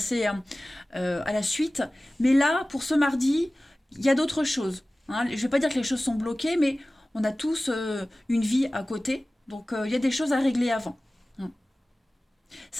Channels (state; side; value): normal; both; correlation 0.97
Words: à la suite. Mais là, pour ce mardi, il y a d'autres choses, hein. Je ne vais pas dire que les choses sont bloquées, mais on a tous une vie à côté. Donc, il y a des choses à régler avant.